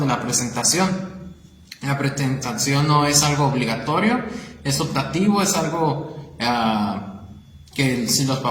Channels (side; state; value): both; identical; correlation 1.00